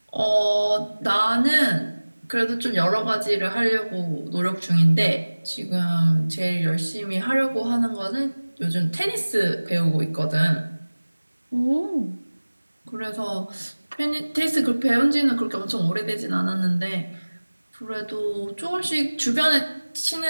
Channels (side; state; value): both; inverted; correlation -1.00